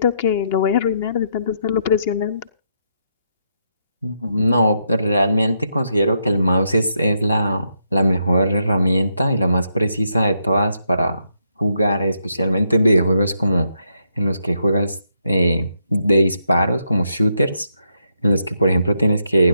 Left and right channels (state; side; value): inverted; both; correlation -0.79